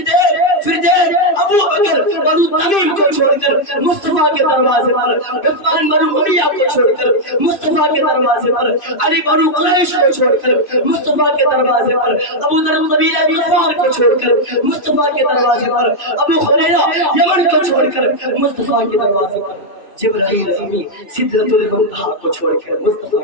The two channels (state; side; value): late; right; 2.6 ms